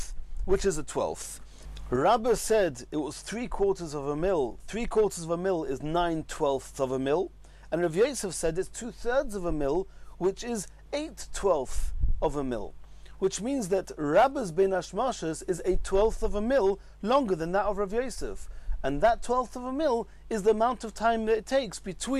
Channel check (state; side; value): identical; both; correlation 1.00